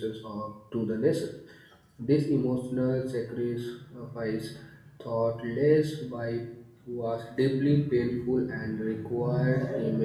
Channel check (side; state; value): both; identical; correlation 1.00